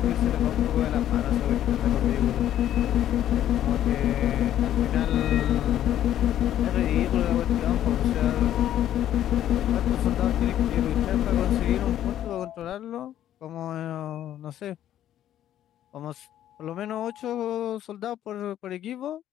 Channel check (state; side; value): quieter; right; 11.6 dB